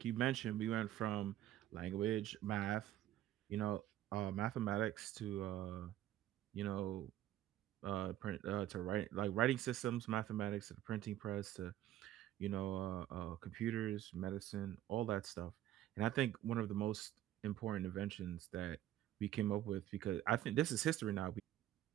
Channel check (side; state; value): left; quieter; 12.8 dB